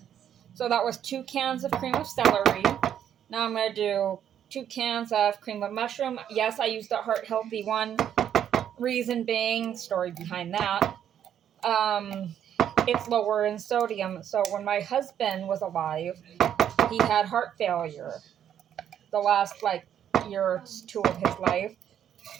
So that was 2 cans of cream of celery. Now I'm going to do 2 cans of cream of mushroom. Yes, I used the heart healthy one. Reason being, story behind that, it's lower in sodium. So when my husband was alive, he had heart failure the last year or 2 of his life.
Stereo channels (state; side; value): quieter; left; 9.7 dB